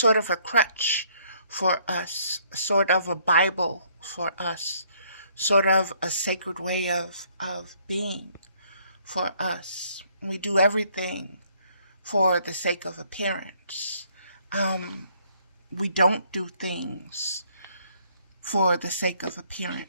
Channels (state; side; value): inverted; both; correlation -0.65